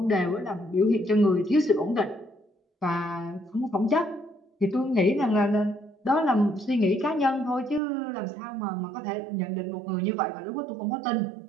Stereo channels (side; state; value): left; drops out; at 7.8 s